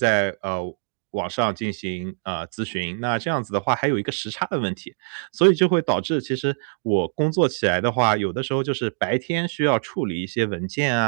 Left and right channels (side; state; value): left; silent; digital silence